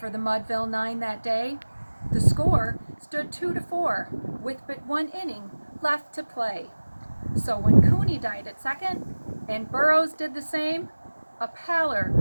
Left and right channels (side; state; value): both; inverted; correlation -1.00